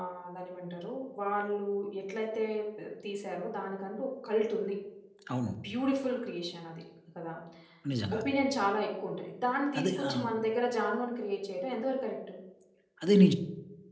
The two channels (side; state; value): both; identical; correlation 1.00